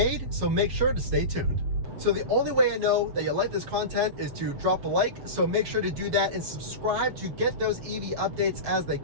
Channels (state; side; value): late; left; 7.2 ms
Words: so make sure to stay tuned. So the only way I know that you like this content is to drop a like, so make sure to do that and subscribe to get those EV updates as they